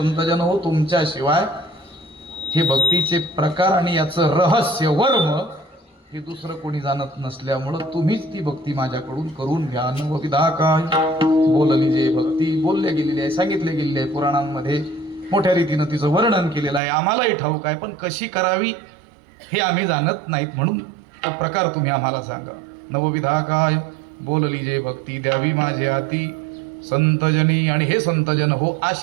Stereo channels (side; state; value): left; drops out; at 16.8 s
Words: हो तुमच्याशिवाय हे भक्तीचे प्रकार आणि याचं रहस्य वर्म हे दुसरं कोणी जाणत नसल्यामुळं तुम्हीच ती भक्ती माझ्याकडून करून घ्या. नवविधा काय बोलली जे भक्ती बोलले गेलेली आहे, सांगितले गेलेली आहे पुराणांमध्ये. मोठ्या रीतीनं तिचं वर्णन केलेलं आहे. आम्हालाही ठाऊक आहे, पण कशी करावी हे आम्ही जाणत नाहीत, म्हणून तो प्रकार तुम्ही आम्हाला सांगा. नवविधा काय बोलली जे भक्ती द्यावी माझे हाती संतजनी. आणि हे संतजन हो,